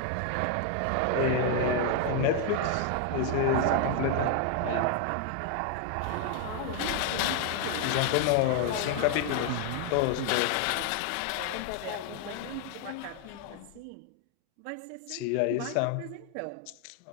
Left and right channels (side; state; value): both; different; correlation 0.00